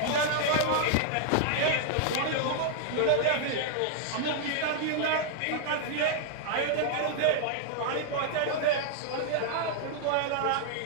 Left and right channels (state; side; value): different; both; correlation 0.00